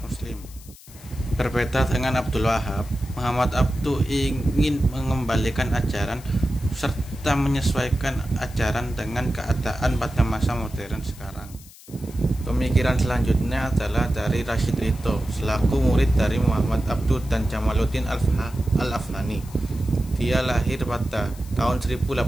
muslim. Berbeda dengan Abdul Wahab, Muhammad Abduh ingin mengembalikan ajaran serta menyesuaikan ajaran dengan keadaan pada masa modern sekarang. Pemikiran selanjutnya adalah dari Rashid Ridho selaku murid dari Muhammad Abduh dan Jamaluddin Al-Afghani. Dia lahir pada tahun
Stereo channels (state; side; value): noise; left; hiss, 21 dB below the sound